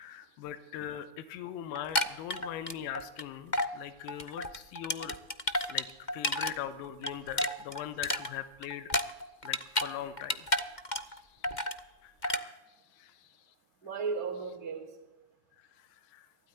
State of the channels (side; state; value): right; late; 2.1 ms